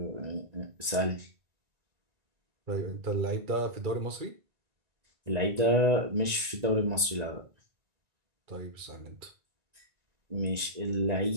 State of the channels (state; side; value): late; left; 1.9 ms